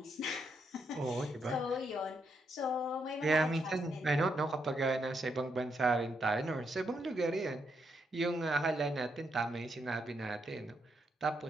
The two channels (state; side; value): normal; both; correlation 0.79